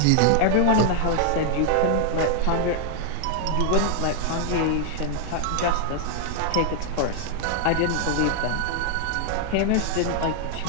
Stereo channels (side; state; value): both; different; correlation 0.00